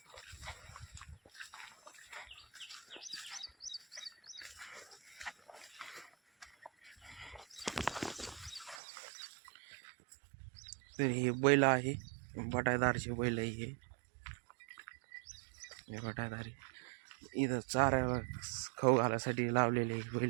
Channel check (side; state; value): left; drops out; at 8.8 s